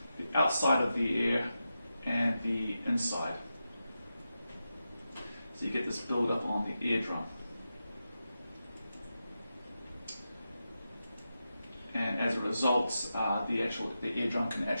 the outside of the ear and the inside. So you get this build-up on the eardrum. And as a result, the eardrum can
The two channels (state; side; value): inverted; both; correlation -0.90